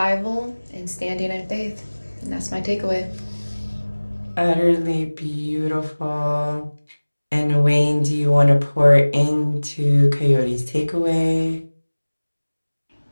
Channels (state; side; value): inverted; both; correlation -1.00